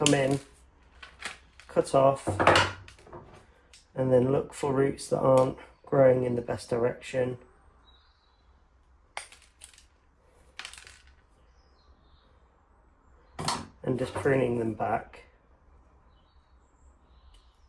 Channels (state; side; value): identical; both; correlation 1.00